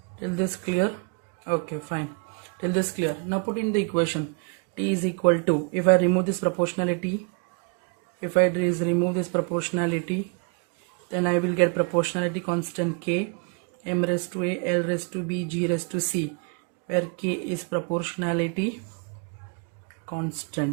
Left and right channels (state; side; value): quieter; left; 34.9 dB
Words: clear? Okay, fine. Till this clear? Now put in the equation. T is equal to, if I remove this proportionality, then I will get proportionality constant K, m raised to A, L raised to B, G raised to C, where K is proportionality